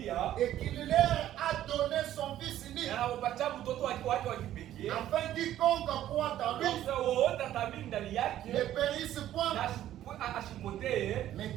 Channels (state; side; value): quieter; left; 12.5 dB